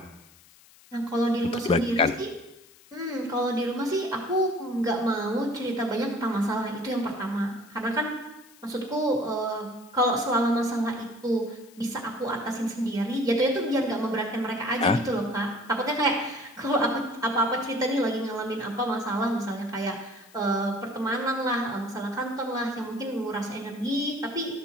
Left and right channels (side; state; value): left; noise; hiss, 25 dB below the sound